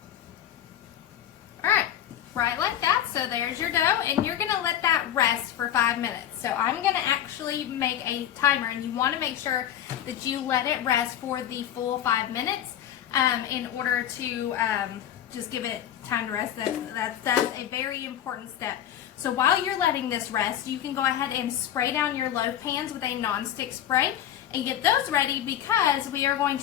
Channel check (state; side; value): quieter; right; 10.8 dB